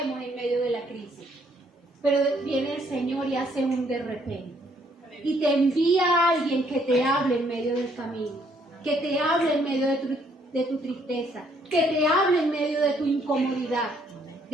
en medio de la crisis. Pero viene el Señor y hace un de repente. Y te envía a alguien que te hable en medio del camino. Que te hable en medio de tu tristeza. Que te hable en medio de tu incomodidad,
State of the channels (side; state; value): both; normal; correlation 0.67